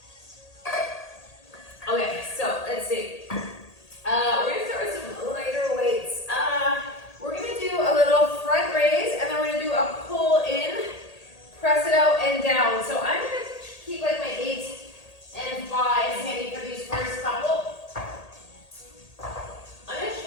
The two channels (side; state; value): right; late; 1.8 ms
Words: Okay, so let's see. We're gonna start with some lighter weights. We're gonna do a little front raise, and then we're gonna do a pull in, press it out and down. So I'm gonna keep like my 8 and 5 handy for these first couple. I'm gonna